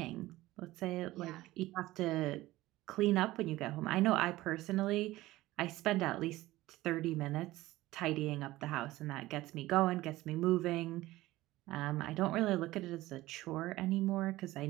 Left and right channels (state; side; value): quieter; left; 17.4 dB